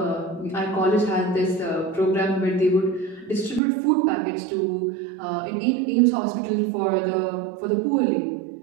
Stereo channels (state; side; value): drops out; left; at 3.6 s